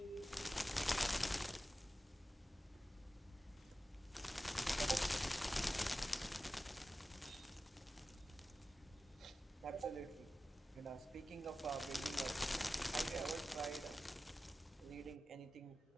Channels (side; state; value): both; normal; correlation 0.94